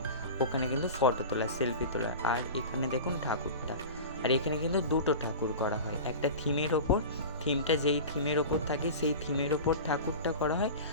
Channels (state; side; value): inverted; both; correlation -0.32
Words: ওখানে কিন্তু ফটো তোলা, সেলফি তোলা। আর এখানে দেখুন ঠাকুরটা। আর এখানে কিন্তু দুটো ঠাকুর করা হয়, একটা থিমের ওপর, থিমটা যেই থিমের ওপর থাকে সেই থিমের ওপর ঠাকুরটা করা হয়,